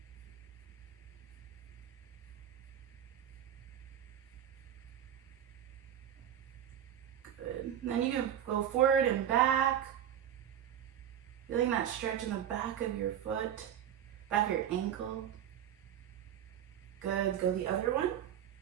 Good. And then you can go forward and back. Feeling that stretch in the back of your foot, back of your ankle. Good, go the other one.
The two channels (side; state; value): left; quieter; 10.2 dB